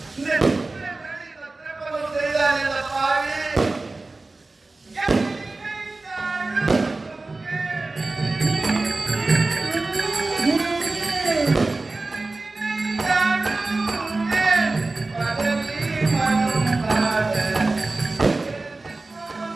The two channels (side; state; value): left; quieter; 3.3 dB